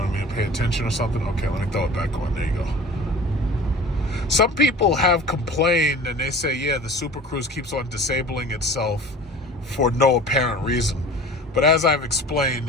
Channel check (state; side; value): normal; both; correlation 0.41